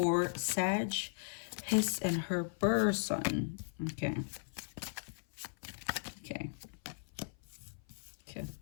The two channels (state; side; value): silent; right; 53 dB below the other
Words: Sag, his and her person? Okay.